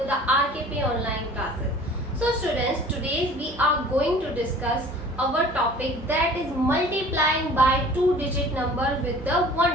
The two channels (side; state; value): both; normal; correlation 0.46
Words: the RKP online classes. So students, today we are going to discuss our topic, that is multiplying by two-digit number with the